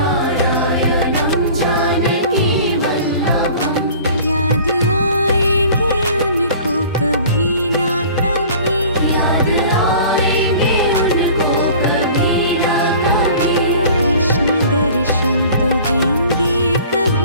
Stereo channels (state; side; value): inverted; both; correlation -0.45